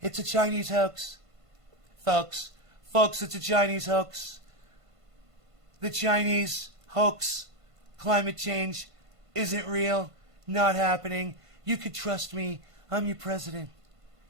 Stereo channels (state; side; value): late; left; 1.5 ms